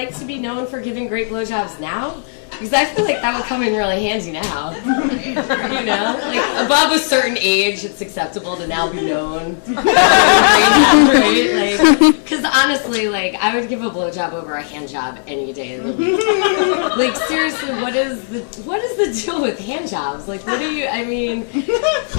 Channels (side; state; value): right; silent; digital silence